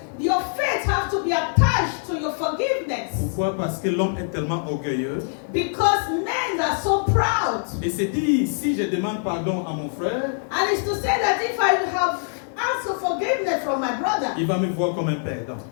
your faith has to be attached to your forgiveness. Pourquoi? Parce que l'homme est tellement orgueilleux. Because men are so proud. Et c'est dit, si je demande pardon à mon frère, And it's to say that if I have asked for forgiveness from my brother, il va me voir comme un perdant.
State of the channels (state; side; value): silent; right; 63 dB below the other